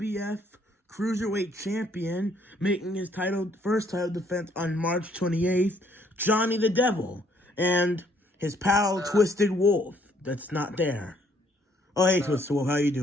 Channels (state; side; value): normal; both; correlation 0.66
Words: Cruiserweight Champion making his first title defense on March 28th, Johnny the Devil, and his pal Twisted Wolf that's not there. Oh, hey, Twisted Wolf, how you